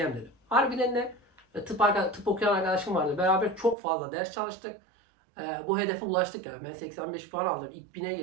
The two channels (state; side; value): drops out; left; at 3.8 s